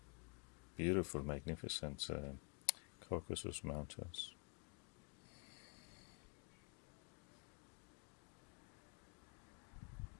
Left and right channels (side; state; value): right; quieter; 35.2 dB